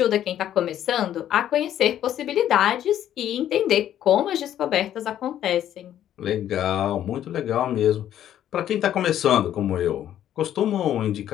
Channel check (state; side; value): quieter; right; 11.2 dB